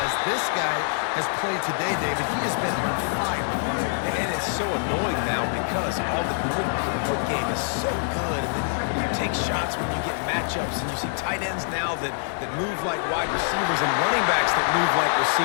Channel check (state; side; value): silent; right; digital silence